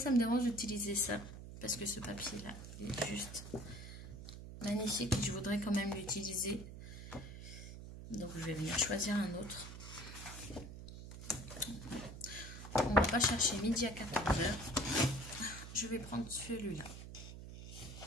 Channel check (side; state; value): right; noise; hum, 11 dB below the sound